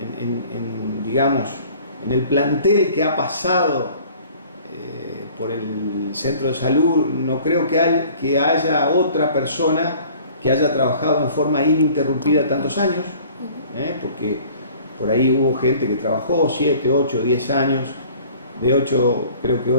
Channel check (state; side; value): inverted; both; correlation -0.50